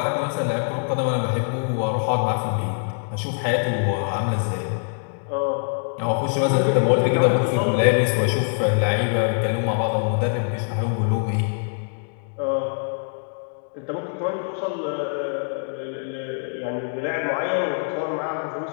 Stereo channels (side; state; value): right; silent; digital silence